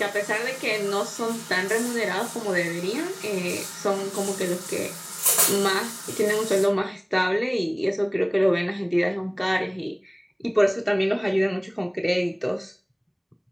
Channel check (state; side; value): identical; both; correlation 1.00